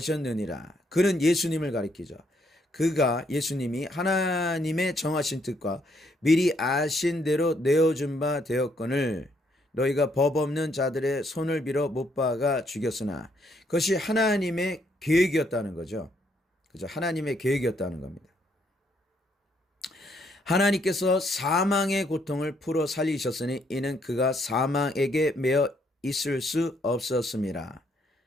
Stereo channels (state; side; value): normal; both; correlation 0.72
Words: 그는 예수님을 가리키죠. 그가 예수님이 하나님의 정하신 뜻과 미리 아신 대로 내어준 바 되었거늘 너희가 법 없는 자들의 손을 빌어 못 박아 죽였으나 그것이 하나님의 계획이었다는 거죠. 그죠? 하나님의 계획이었다는 겁니다. 하나님께서 사망의 고통을 풀어 살리셨으니 이는 그가 사망에게 매어 있을 수 없었습니다.